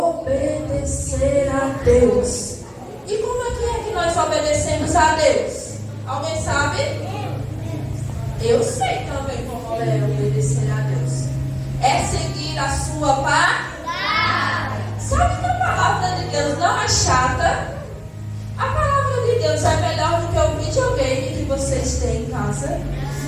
a Deus. E como é que nós obedecemos a Deus? Alguém sabe? Eu sei também como é obedecer a Deus. É seguir a sua palavra. Sabe que a palavra de Deus não é chata? A palavra de Deus é melhor do que o videogame que vocês têm em casa.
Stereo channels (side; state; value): both; identical; correlation 1.00